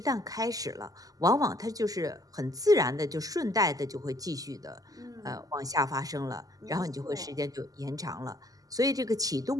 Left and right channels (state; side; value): late; left; 0.17 ms